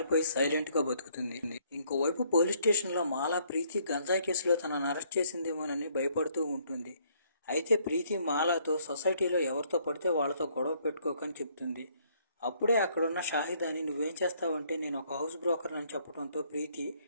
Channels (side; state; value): both; inverted; correlation -0.66